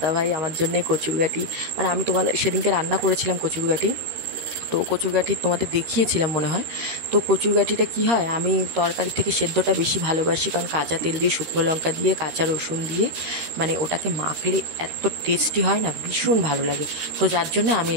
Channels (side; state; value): left; late; 13 ms